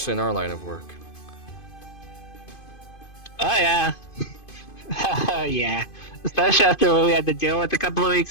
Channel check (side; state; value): right; late; 2.5 ms